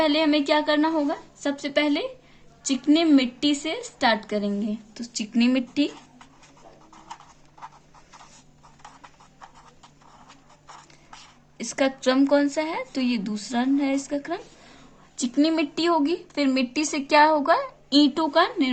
हमें क्या करना होगा? सबसे पहले चिकनी मिट्टी से स्टार्ट करेंगे। तो चिकनी मिट्टी, इसका क्रम कौन सा है? तो ये दूसरा है इसका क्रम। चिकनी मिट्टी होगी, फिर मिट्टी से क्या होगा? ईंटों का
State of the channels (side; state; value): both; identical; correlation 1.00